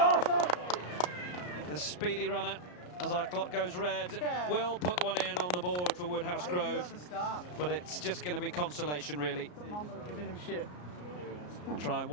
well. The speedy runner, as our clock goes red, will put one in on the board for Woodhouse Grove, but it's just going to be consolation, really. Try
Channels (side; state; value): right; late; 34 ms